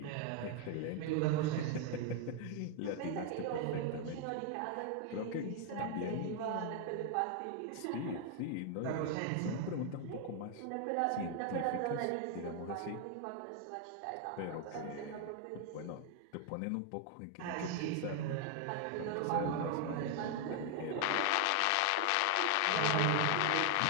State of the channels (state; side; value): different; both; correlation 0.00